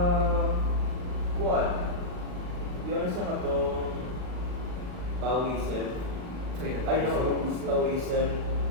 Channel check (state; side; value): late; left; 39 ms